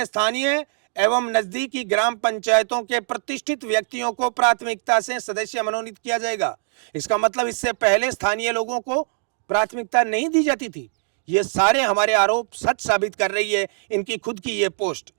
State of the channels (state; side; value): silent; left; digital silence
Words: स्थानीय एवं नजदीकी ग्राम पंचायतों के प्रतिष्ठित व्यक्तियों को प्राथमिकता से सदस्य मनोनीत किया जाएगा। इसका मतलब इससे पहले स्थानीय लोगों को प्राथमिकता नहीं दी जाती थी। ये सारे हमारे आरोप सच साबित कर रही है इनकी खुद की ये पोस्ट।